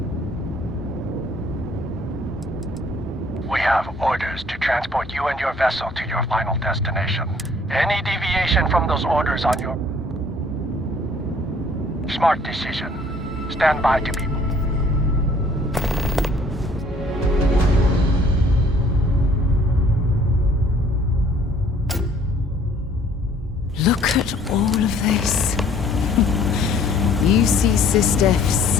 We have orders to transport you and your vessel to your final destination. Any deviation from those orders on your... Smart decision. Stand by to be... Look at all of this. UC Sistef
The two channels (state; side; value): normal; both; correlation 0.57